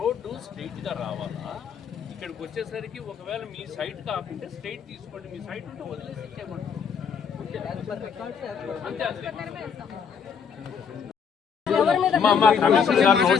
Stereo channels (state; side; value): quieter; right; 6.7 dB